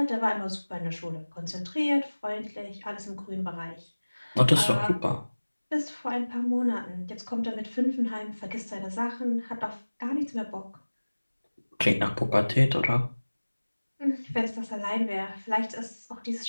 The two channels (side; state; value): both; inverted; correlation -1.00